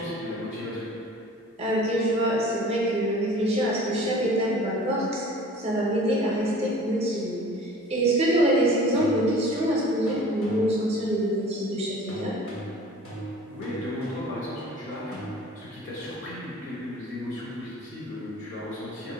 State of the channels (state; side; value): normal; both; correlation 0.45